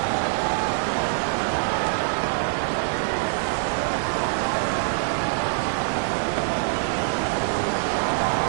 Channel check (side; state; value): left; silent; 60 dB below the other